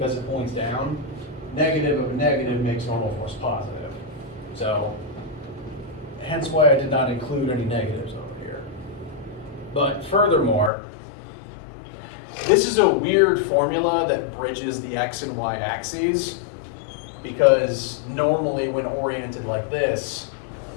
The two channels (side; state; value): right; drops out; at 10.7 s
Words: it points down, negative of a negative makes normal force positive. So, hence why I did not include any negatives over here. But furthermore, this is a weird formula that bridges the x and y axes, because normally when oriented like this,